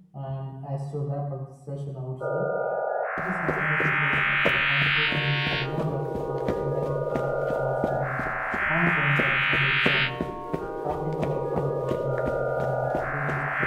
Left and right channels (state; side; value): identical; both; correlation 1.00